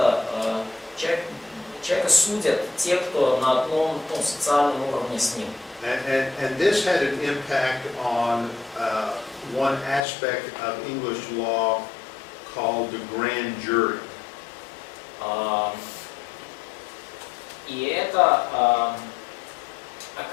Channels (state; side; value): drops out; right; at 10.1 s